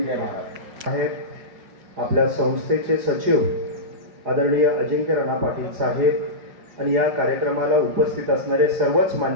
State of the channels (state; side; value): late; left; 4.8 ms